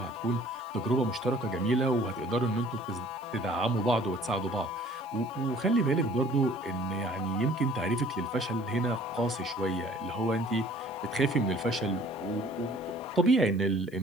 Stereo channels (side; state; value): left; noise; hiss, 28 dB below the sound